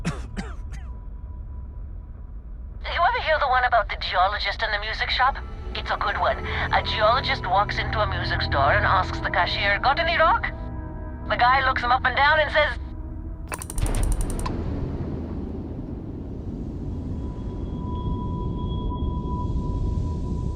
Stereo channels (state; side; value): identical; both; correlation 1.00